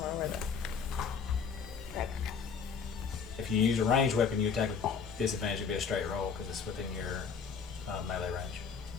don't know where the right. If you use a ranged weapon, you attack with disadvantage. It'd be a straight roll because it's within your melee range.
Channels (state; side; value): quieter; right; 6.0 dB